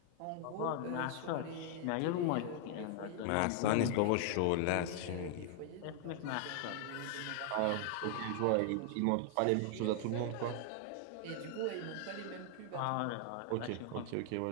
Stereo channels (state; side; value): different; both; correlation 0.00